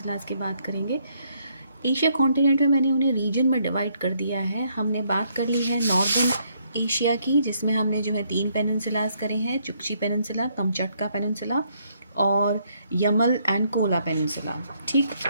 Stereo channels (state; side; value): inverted; both; correlation -0.71